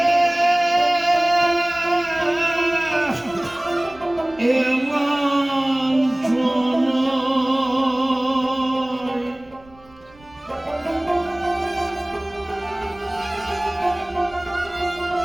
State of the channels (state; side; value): noise; right; rumble, 27 dB below the sound